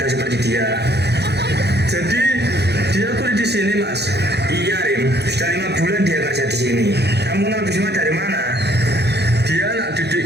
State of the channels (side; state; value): left; late; 0.48 ms